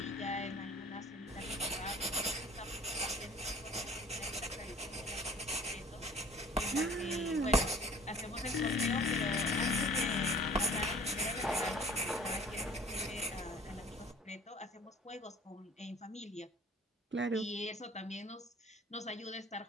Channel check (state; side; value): normal; both; correlation 0.49